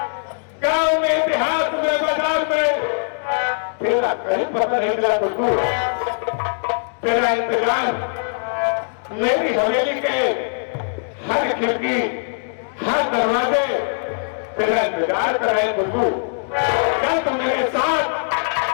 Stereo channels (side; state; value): right; silent; 65 dB below the other